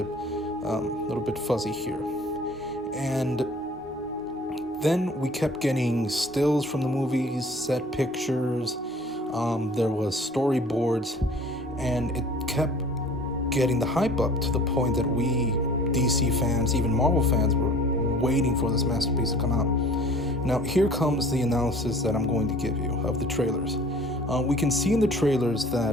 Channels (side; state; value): both; normal; correlation 0.49